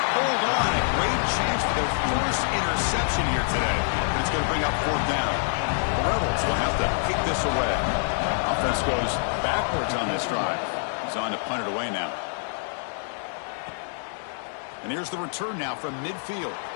hold on. A great chance for their first interception here today. But it's going to bring up 4th down. The Rebels will have to kick this away. Offense goes backwards on this drive. He's on to punt it away now. And here's the return now from midfield.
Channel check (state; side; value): silent; right; 61 dB below the other